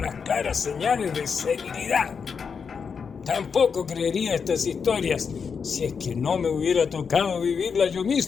claras señales de serenidad. Tampoco creería estas historias si es que no me hubiera tocado vivirlas yo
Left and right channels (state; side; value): quieter; right; 6.0 dB